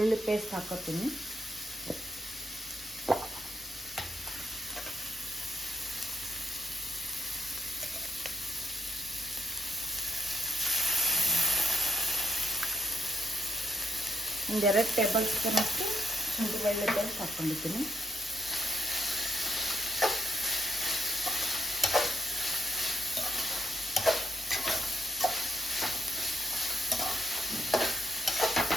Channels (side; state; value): both; normal; correlation 0.76